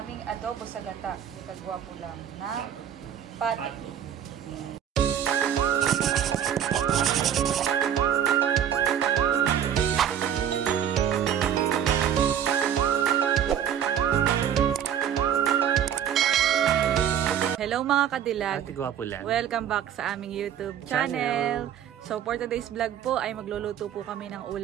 aming adobo sa gata. Kagwapo lang na pato. Hello mga kadilag. Ate Gwapo lang. Welcome back sa aming YouTube channel. So for today's vlog po ay magluluto po kami ng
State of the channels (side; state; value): left; quieter; 9.3 dB